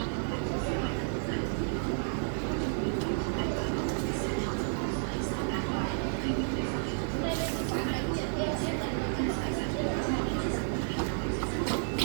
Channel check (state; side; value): silent; left; digital silence